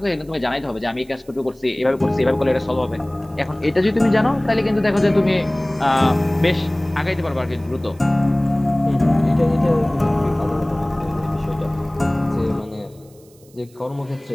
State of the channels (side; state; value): right; noise; hiss, 29 dB below the sound